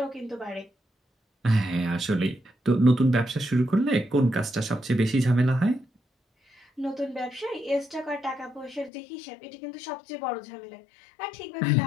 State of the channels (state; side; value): drops out; right; at 8.9 s